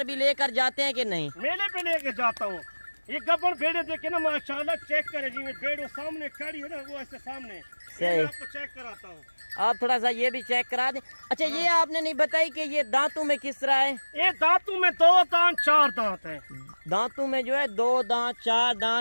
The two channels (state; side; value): inverted; both; correlation -1.00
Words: بھی لے کر جاتے ہیں کہ نہیں؟ میلے پہ لے کے جاتا ہوں. یہ گبن بھیڑے دیکھے نا ماشاءاللہ چیک کرے جی میں بھیڑ سامنے کھڑی ہو نا وہ ایسے سامنے آپ کو چیک کراتا ہوں. آپ تھوڑا سا یہ بھی چیک کرا دیں. اچھا یہ آپ نے نہیں بتائی کہ یہ دانتوں میں کس طرح ہے؟ یہ دانتوں میں 2 دانت 4 دانت ہیں. دانتوں میں جو ہے 2 دانت 4